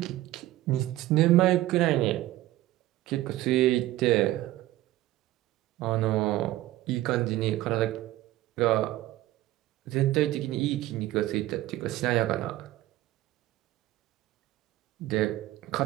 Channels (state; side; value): quieter; left; 15.9 dB